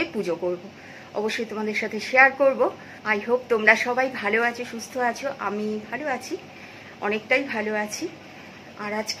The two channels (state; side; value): identical; both; correlation 1.00